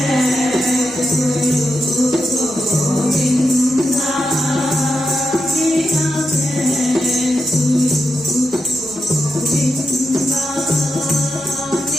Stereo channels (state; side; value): normal; both; correlation 0.86